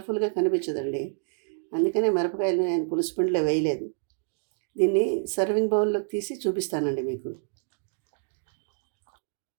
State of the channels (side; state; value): left; silent; digital silence